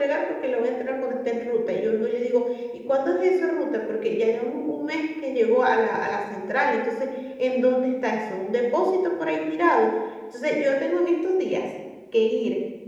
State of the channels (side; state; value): both; identical; correlation 1.00